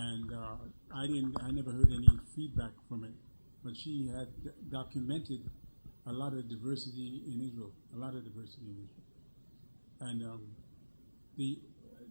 I never heard any feedback from but she had documented a lot of diversity in Israel, And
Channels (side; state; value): both; inverted; correlation -1.00